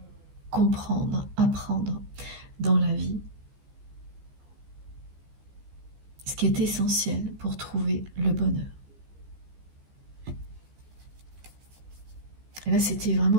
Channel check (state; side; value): late; left; 15 ms